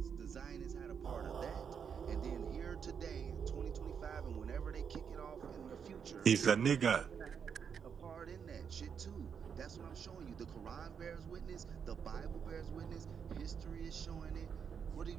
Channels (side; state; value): left; quieter; 7.0 dB